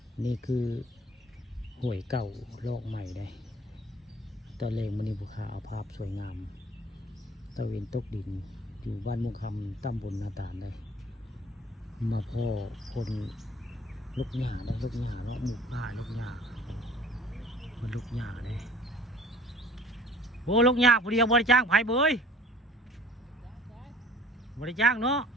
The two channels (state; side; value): normal; both; correlation 0.51